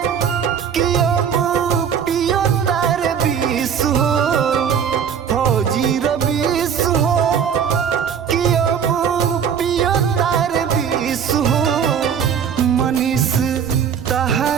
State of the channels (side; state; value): left; quieter; 7.7 dB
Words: कि अब पियो तार बीस हो फौजी रबीस हो कि अब पियो तार बीस हो मनीष